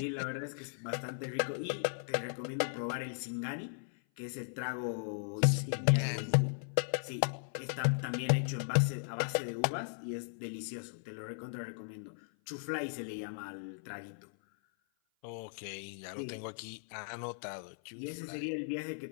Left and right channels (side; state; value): right; silent; 53 dB below the other